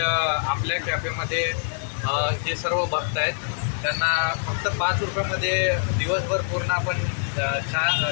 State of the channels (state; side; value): silent; right; digital silence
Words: कॅफेमध्ये जे सर्व भक्त आहेत त्यांना फक्त 5 रुपयामध्ये दिवसभर पूर्ण आपण